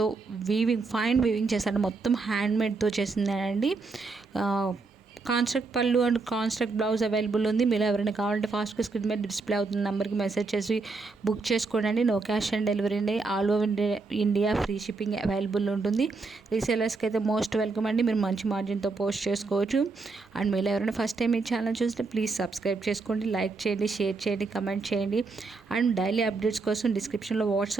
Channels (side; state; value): left; quieter; 4.0 dB